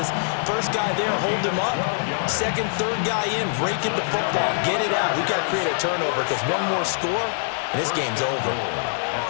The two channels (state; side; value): silent; right; digital silence